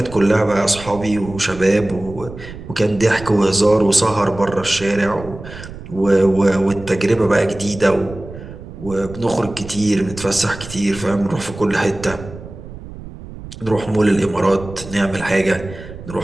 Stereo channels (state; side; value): noise; right; rumble, 14 dB below the sound